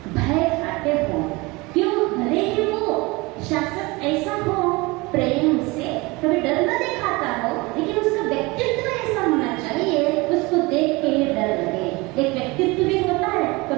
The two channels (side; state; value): left; quieter; 24.1 dB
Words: भय खाते हो। क्यों? भले ही वो शासक ऐसा हो प्रेम से, कभी डर न दिखाता हो, लेकिन उसका व्यक्तित्व ऐसा होना चाहिए उसको देख के डर लगे। एक व्यक्तित्व भी होता है,